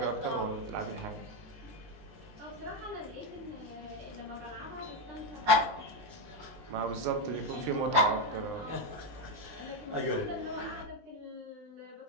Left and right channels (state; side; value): late; left; 19 ms